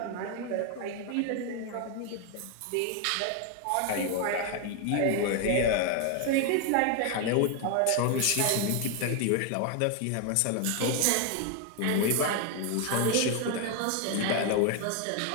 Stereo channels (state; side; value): different; both; correlation 0.01